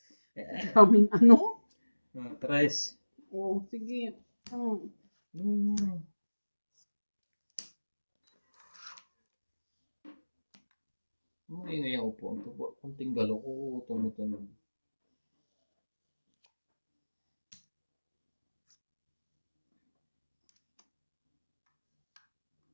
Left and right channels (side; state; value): both; inverted; correlation -1.00